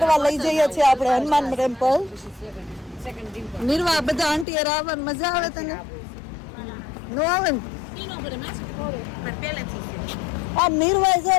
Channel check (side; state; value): right; drops out; at 4.5 s